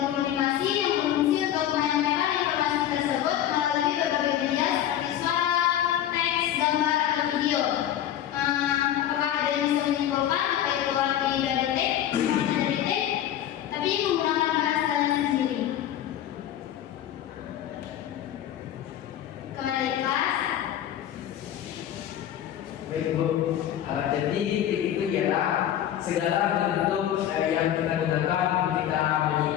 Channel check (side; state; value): right; quieter; 11.2 dB